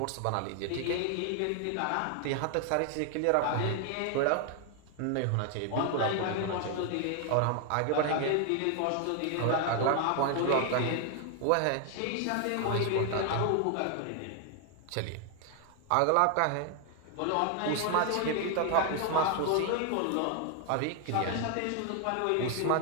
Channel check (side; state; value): both; different; correlation 0.00